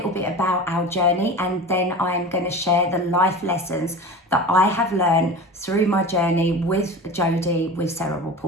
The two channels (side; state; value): both; normal; correlation 0.33